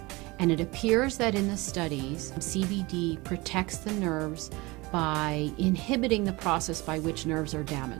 And it appears that in the studies, CBD protects the nerves by inhibiting the process by which nerves are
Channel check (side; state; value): left; quieter; 23.3 dB